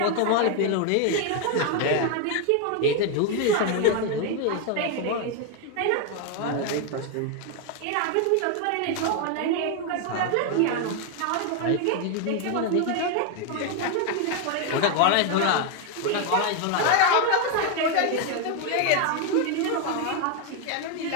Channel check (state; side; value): different; both; correlation 0.01